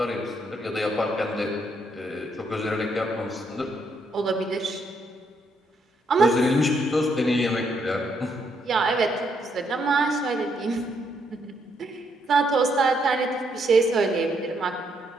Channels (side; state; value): both; normal; correlation 0.74